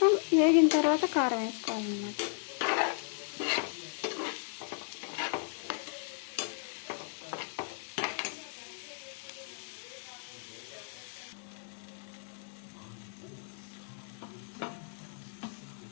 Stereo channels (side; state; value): right; silent; 54 dB below the other